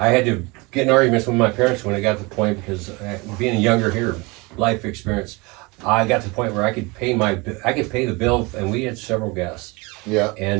had to get in arguments with my parents when I got to the point because being younger here, life experience, I got to the point where I could pay the bill, and we had several guests. Yeah.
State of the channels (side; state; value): left; quieter; 26.1 dB